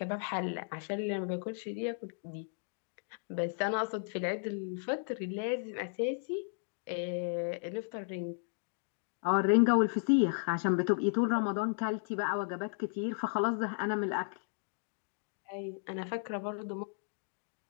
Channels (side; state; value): right; silent; digital silence